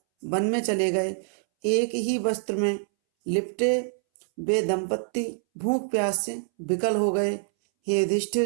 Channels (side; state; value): left; silent; 61 dB below the other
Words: वन में चले गए। एक ही वस्त्र में लिपटे वे दंपत्ति भूख प्यास से विकल हो गए। हे